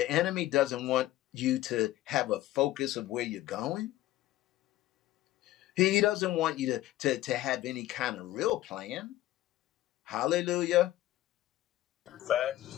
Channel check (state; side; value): quieter; right; 15.2 dB